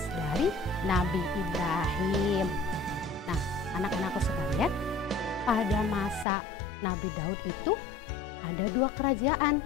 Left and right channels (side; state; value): right; drops out; at 6.2 s